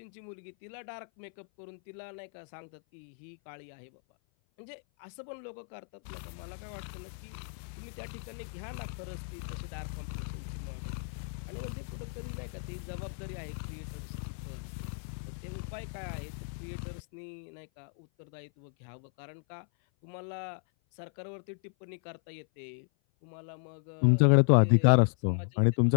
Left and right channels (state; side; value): silent; right; 55 dB below the other